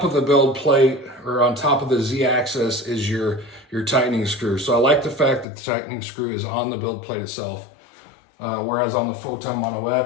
of the build plate, or on top of the Z-axis, is your tightening screw. So I like the fact that the tightening screw is on the build plate itself, whereas on the Photon Mono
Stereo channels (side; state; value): right; drops out; at 5.5 s